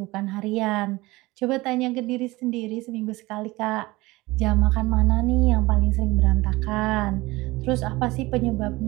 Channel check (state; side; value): quieter; left; 20.7 dB